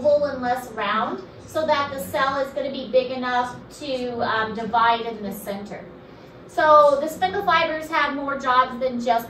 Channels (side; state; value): both; identical; correlation 1.00